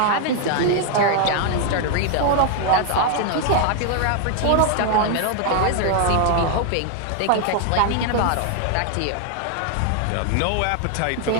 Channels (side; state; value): both; different; correlation 0.00